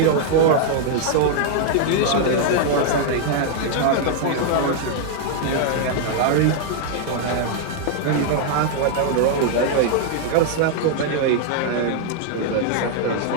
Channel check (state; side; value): different; both; correlation 0.00